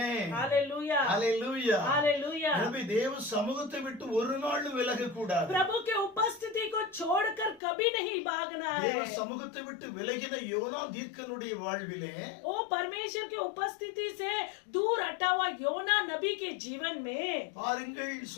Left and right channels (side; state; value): right; drops out; at 7.6 s